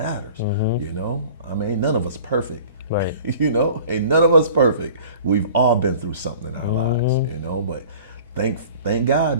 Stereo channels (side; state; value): both; inverted; correlation -0.46